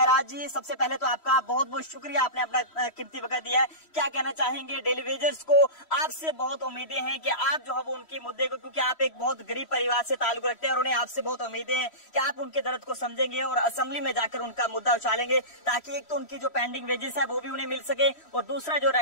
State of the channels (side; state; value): right; late; 3.1 ms